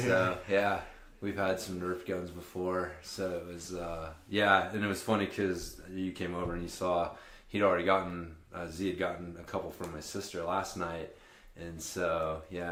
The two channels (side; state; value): both; identical; correlation 1.00